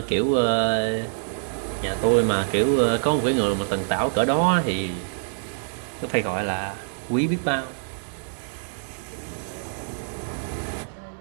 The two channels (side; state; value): left; silent; 59 dB below the other